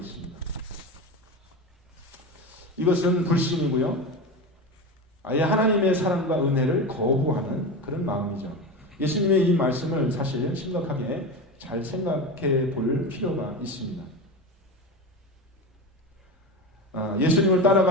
이것은 불신이고요. 아예 하나님의 사랑과 은혜를 거부하는 그런 마음이죠. 예수님의 이 말씀을 사실 심각하게 잘 생각해 볼 필요가 있습니다. 예수님을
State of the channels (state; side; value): normal; both; correlation 0.23